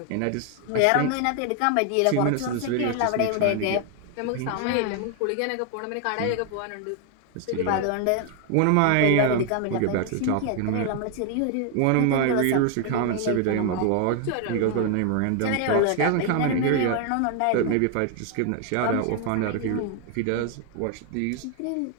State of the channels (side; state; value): both; different; correlation 0.00